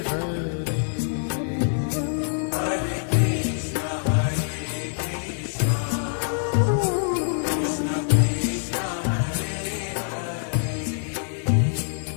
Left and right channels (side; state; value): right; silent; digital silence